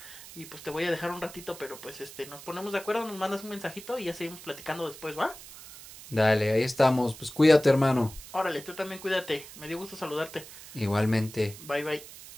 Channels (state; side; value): noise; right; hiss, 16 dB below the sound